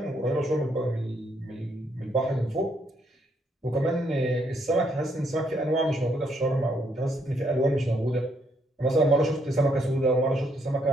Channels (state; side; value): normal; both; correlation 0.73